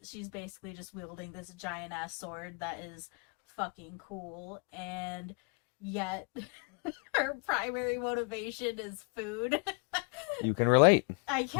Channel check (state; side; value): quieter; right; 36.6 dB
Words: basically just wielding this giant ass sword that is fucking cool, and yet her primary motivation is food. You can relate. I